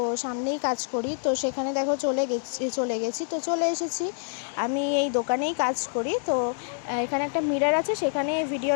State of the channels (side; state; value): right; silent; digital silence